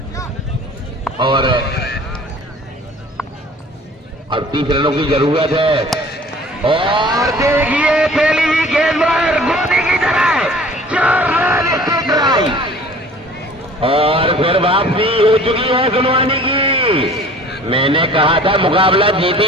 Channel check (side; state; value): both; normal; correlation 0.48